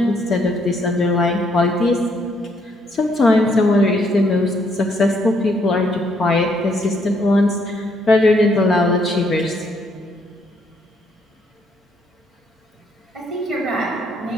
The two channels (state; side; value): normal; both; correlation 0.71